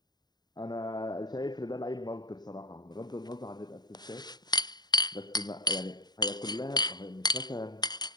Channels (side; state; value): right; late; 0.20 ms